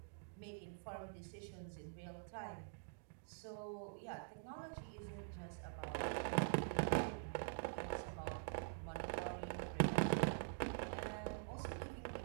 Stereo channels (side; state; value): left; silent; digital silence